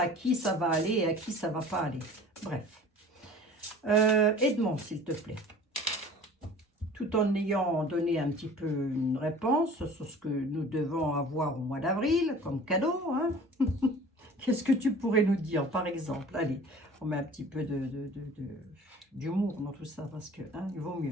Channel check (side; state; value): both; normal; correlation 0.44